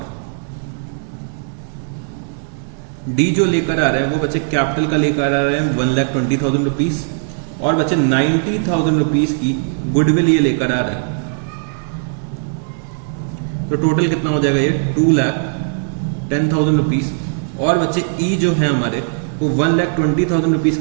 D जो लेकर आ रहे हैं वो बच्चे कैपिटल का लेकर आ रहे हैं 1,20,000 रुपीज और बच्चे 90,000 रुपीज की गुडविल ये लेकर आ रहे हैं। तो टोटल कितना हो जाएगा ये 2,10,000 रुपीज। और बच्चे ई जो है हमारे वो 1,20,000 रुपीज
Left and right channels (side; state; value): left; silent; digital silence